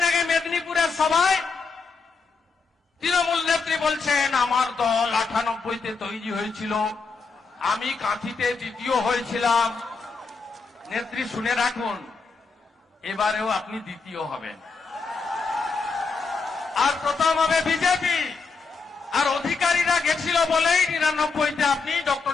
আগে মেদিনীপুরের সভায় তৃণমূল নেত্রী বলছেন আমার দল 98তে তৈরি হয়েছিল, আমি কাঁথিতে দ্বিতীয় হয়েছিলাম। নেত্রী শুনে রাখুন, এবারেও আপনি দ্বিতীয় হবেন, আর প্রথম হবে বিজেপি। আর অধিকারীরা গেছিল বলেই 99তে আপনি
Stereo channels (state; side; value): quieter; right; 4.6 dB